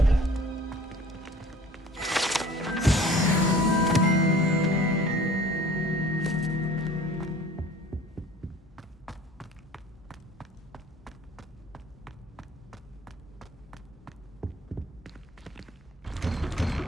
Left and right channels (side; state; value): both; normal; correlation 0.48